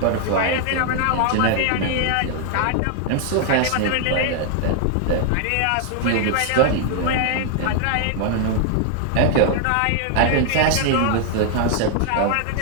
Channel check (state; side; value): different; both; correlation 0.00